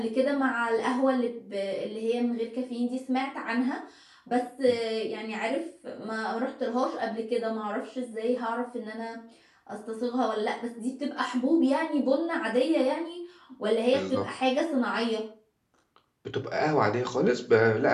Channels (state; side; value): identical; both; correlation 1.00